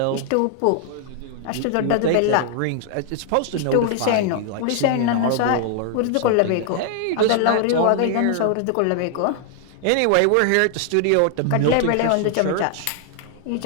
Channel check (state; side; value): different; both; correlation 0.00